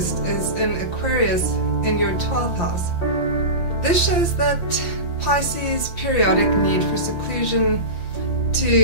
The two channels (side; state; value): right; late; 5.9 ms